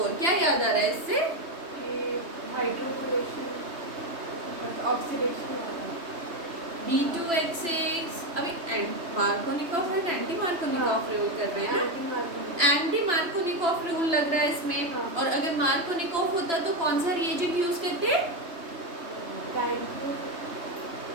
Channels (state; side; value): late; left; 3.2 ms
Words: क्या याद आ रहा है इससे? हाइड्रोकोलेशन ऑक्सीडेशन B2H6 अभी मार्कोनिकॉफ और एंटी मार्कोनिकॉफ रूल कर रहे हैं। एंटी मार्कोनिकॉफ रूल लग रहा है इसमें। हाँ। और अगर मार्कोनिकॉफ होता तो कौन सा रिएजेंट यूज करते?